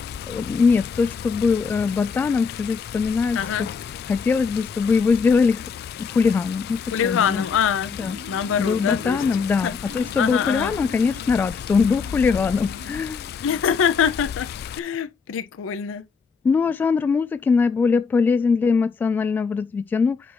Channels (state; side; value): quieter; right; 5.4 dB